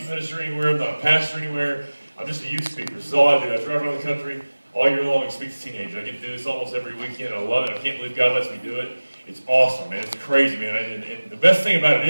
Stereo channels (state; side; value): inverted; both; correlation -1.00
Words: minister anywhere. I'm not a pastor anywhere. I'm just a youth speaker. This is all I do. I drive around the country all year long and speak to teenagers. I get to do this almost every weekend. I love it. I can't believe God lets me do it. It's awesome, man. It's crazy, man. And the best thing about it